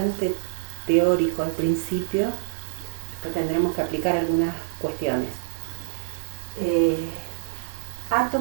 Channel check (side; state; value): left; silent; 61 dB below the other